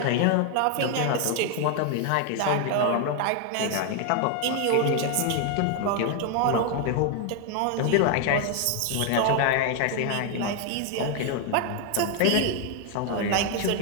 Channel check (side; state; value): both; different; correlation 0.01